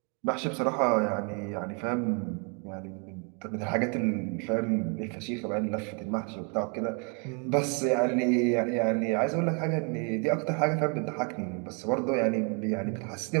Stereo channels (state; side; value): quieter; left; 36.4 dB